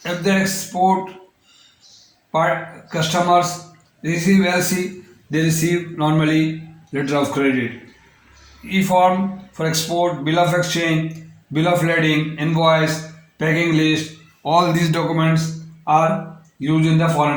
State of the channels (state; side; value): identical; both; correlation 1.00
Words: If the export customers receive LC, they receive normally letter of credit. E-form for export, bill of exchange, bill of lading, invoice, packing list, all these documents are used in the